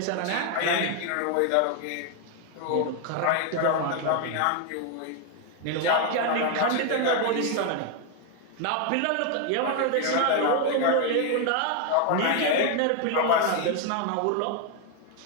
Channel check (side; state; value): both; different; correlation 0.01